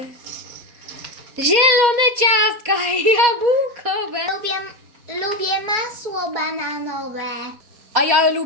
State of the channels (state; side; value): late; left; 4.1 ms